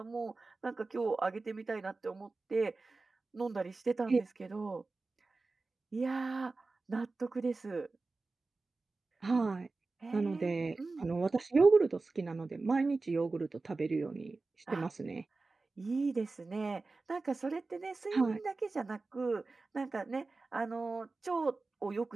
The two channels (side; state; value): left; quieter; 3.7 dB